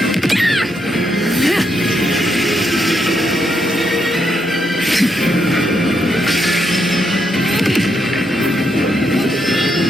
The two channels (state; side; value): normal; both; correlation 0.79